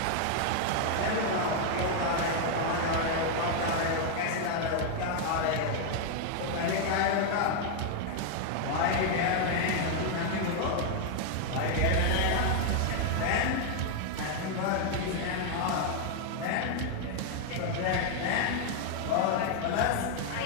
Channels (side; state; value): both; different; correlation 0.00